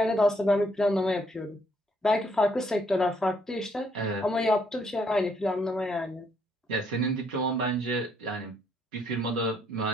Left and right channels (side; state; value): both; normal; correlation 0.70